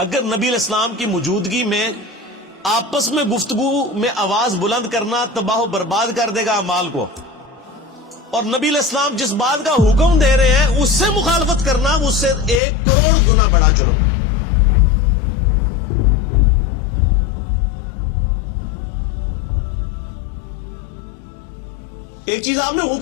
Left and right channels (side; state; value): right; drops out; at 12.6 s